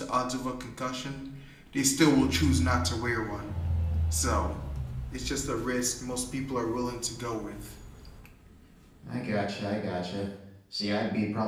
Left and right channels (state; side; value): identical; both; correlation 1.00